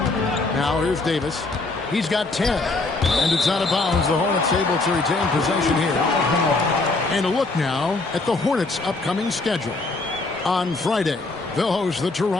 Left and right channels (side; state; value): right; quieter; 3.4 dB